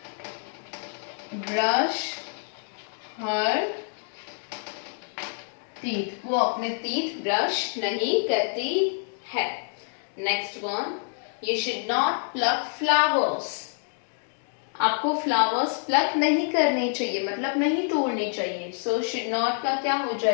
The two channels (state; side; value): silent; right; 60 dB below the other